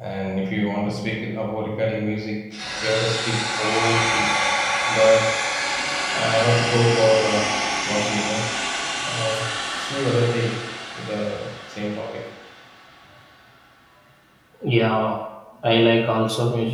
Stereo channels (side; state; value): both; identical; correlation 1.00